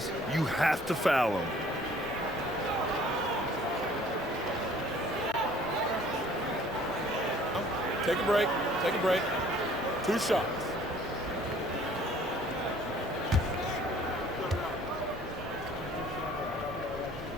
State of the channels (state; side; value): normal; both; correlation 0.55